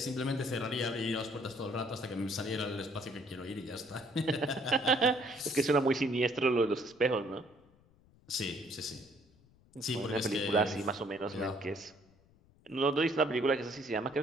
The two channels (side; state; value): left; noise; rumble, 29 dB below the sound